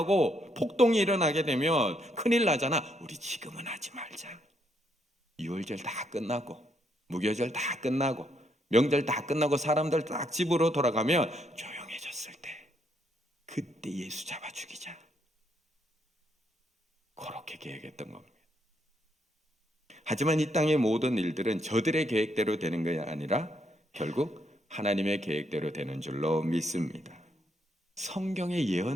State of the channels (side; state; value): both; normal; correlation 0.75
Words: 폭동이 일어나게 되면 큰일 나잖아. 우리 지금은 하지 말자. 유월절 다 끝나고 무교절 다 끝나고 명절 다 끝나고 사람들 딱 집으로 돌아가면 조용해졌을 때 그때 예수 잡아 죽이자. 그렇게 계획했던 겁니다. 하지만 이 땅의 모든 일들은 저들의 계획대로 되는 것이 아니라 결국 하나님의 계획대로 되는 줄로 믿습니다. 성경의